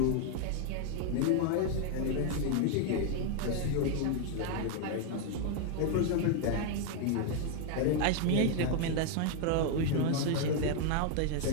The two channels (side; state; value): both; different; correlation 0.01